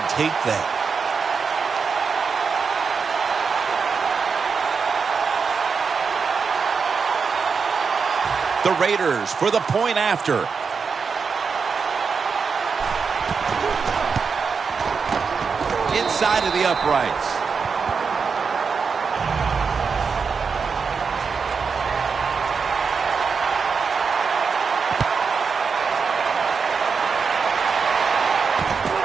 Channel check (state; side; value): quieter; left; 5.5 dB